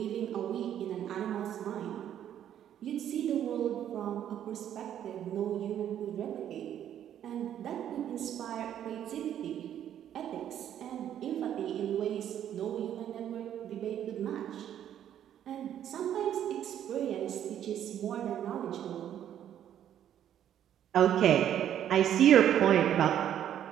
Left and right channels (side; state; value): left; quieter; 10.4 dB